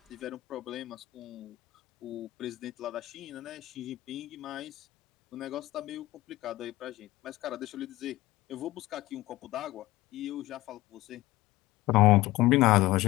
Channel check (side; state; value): right; quieter; 17.6 dB